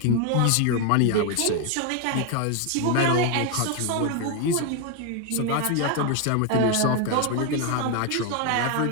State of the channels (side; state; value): both; different; correlation 0.01